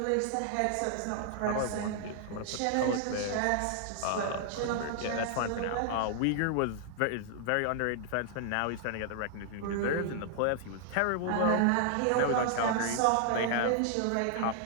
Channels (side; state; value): both; different; correlation 0.00